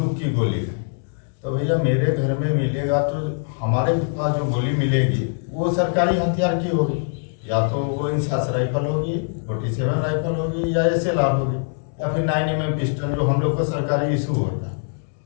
की गोली है। तो भैया मेरे घर में मिलेगा तो हमारे पास जो गोली मिलेगी वो सरकारी हथियार की होगी, या तो वो इंसास राइफल होगी, 47 राइफल होगी, या SLR होगी, या फिर 9mm पिस्टल जो हम लोग को सरकारी इशू होता है,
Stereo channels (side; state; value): right; silent; digital silence